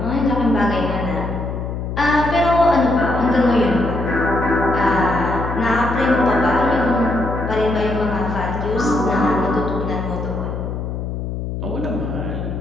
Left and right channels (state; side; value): noise; left; hum, 5 dB below the sound